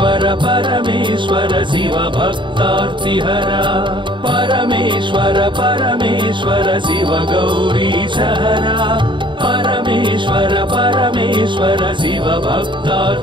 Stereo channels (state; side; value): late; left; 0.23 ms